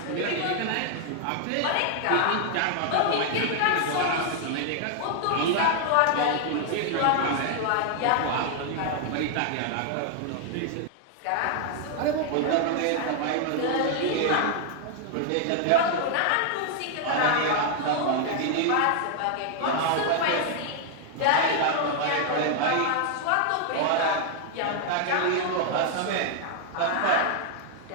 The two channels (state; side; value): different; both; correlation 0.00